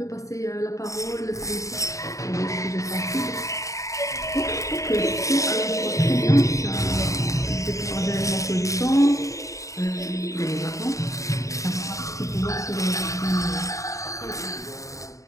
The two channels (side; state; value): right; late; 0.16 ms